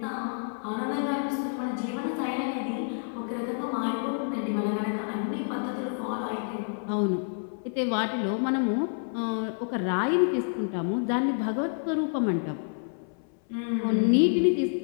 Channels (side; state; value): right; silent; 59 dB below the other